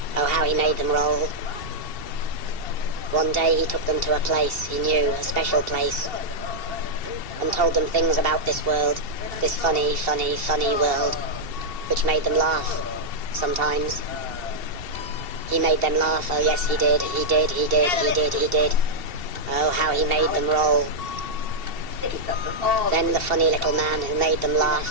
Oh how he made them roll. One day he took them to a place he knew, a special place, and told them things about this world, this funny, funny, funny world, which made them laugh, sometimes. He made them laugh, oh yes he did, he did, he did, he did, he did. Oh how he made them roll. Then the funny little man who made them laugh,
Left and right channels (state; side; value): late; left; 2.7 ms